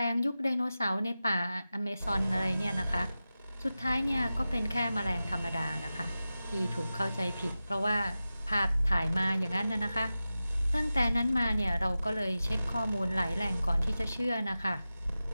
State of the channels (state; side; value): inverted; both; correlation -0.94